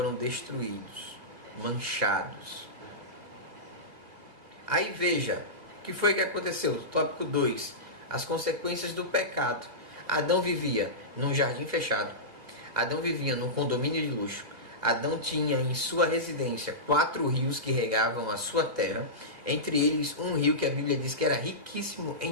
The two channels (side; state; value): left; late; 1.8 ms